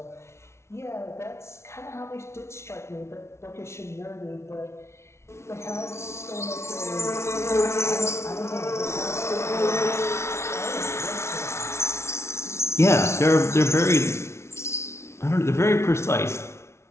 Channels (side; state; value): right; late; 0.13 ms